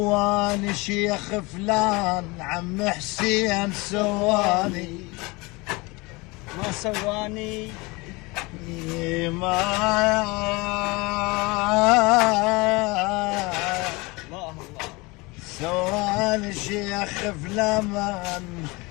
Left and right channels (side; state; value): right; quieter; 25.0 dB